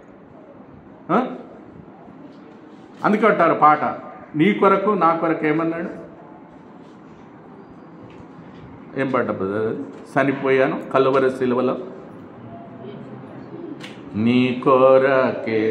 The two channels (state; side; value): identical; both; correlation 1.00